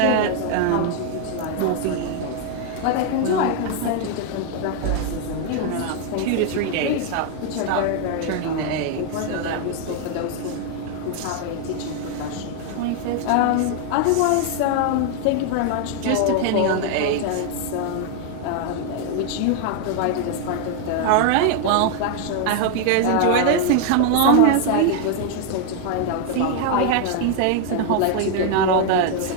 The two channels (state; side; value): different; both; correlation 0.00